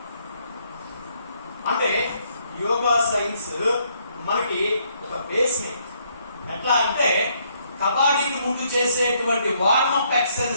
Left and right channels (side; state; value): both; inverted; correlation -0.70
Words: అంటే యోగా సైన్స్ మనకి ఒక బేస్మెంట్. ఎట్లా అంటే కబడ్డీకి ముందు చేసేటువంటి వార్మప్